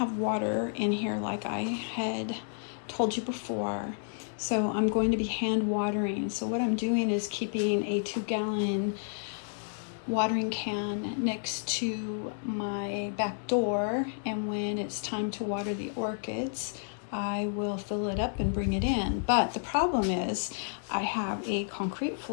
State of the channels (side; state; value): right; silent; digital silence